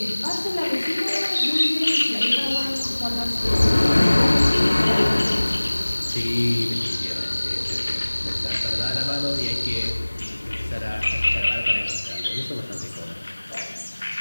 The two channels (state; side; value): inverted; both; correlation -1.00